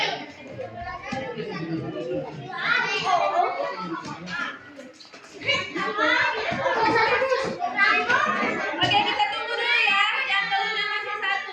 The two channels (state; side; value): identical; both; correlation 1.00